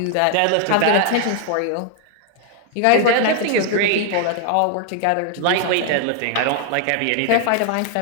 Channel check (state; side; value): different; both; correlation 0.00